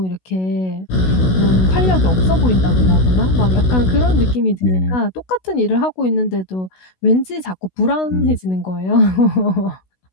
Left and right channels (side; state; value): right; late; 16 ms